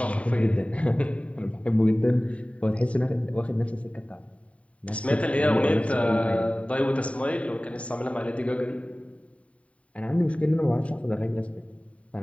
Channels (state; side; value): late; right; 0.065 ms